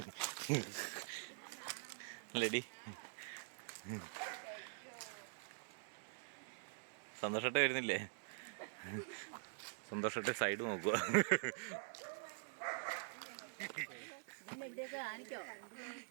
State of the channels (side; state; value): left; silent; digital silence